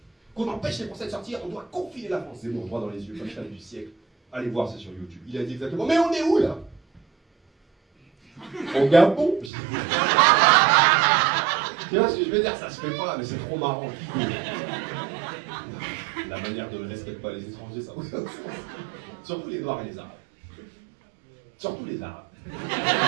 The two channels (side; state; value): left; drops out; at 9.5 s